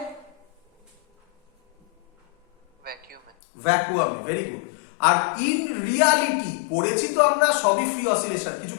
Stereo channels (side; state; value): right; drops out; at 3.3 s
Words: ভ্যাকুয়ামে। ভ্যাকুয়ামে। Very good. আর ইন রিয়ালিটি পড়েছি তো আমরা সবই ফ্রি অসিলেশন, কিছু